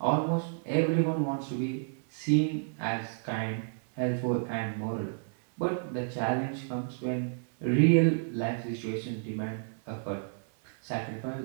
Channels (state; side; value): silent; left; 57 dB below the other